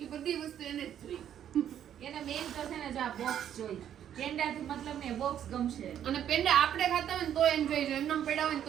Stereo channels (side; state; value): left; quieter; 10.0 dB